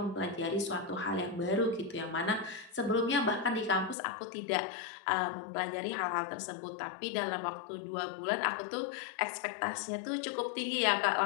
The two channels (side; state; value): right; drops out; at 4.0 s